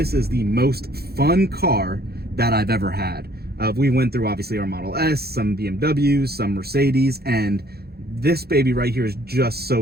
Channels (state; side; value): late; left; 0.46 ms